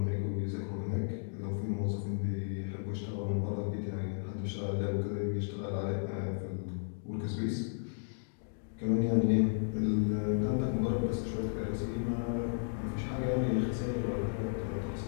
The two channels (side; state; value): right; silent; digital silence